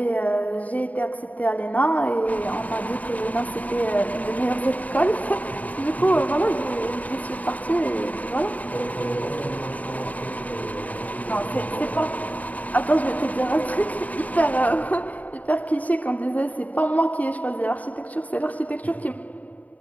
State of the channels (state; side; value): late; right; 0.072 ms